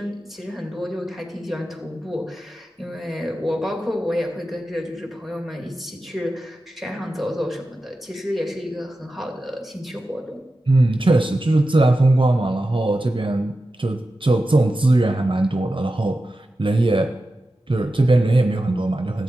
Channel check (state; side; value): normal; both; correlation 0.92